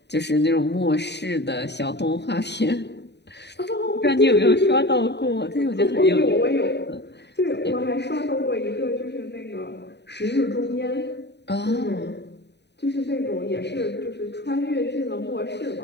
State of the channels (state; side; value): late; right; 0.50 ms